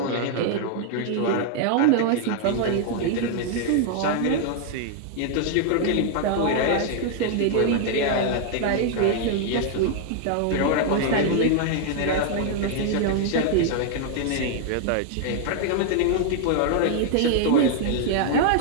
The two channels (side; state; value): both; different; correlation 0.00